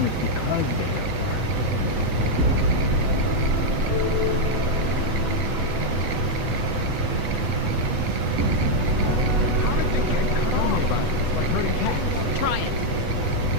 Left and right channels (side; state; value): left; late; 8.1 ms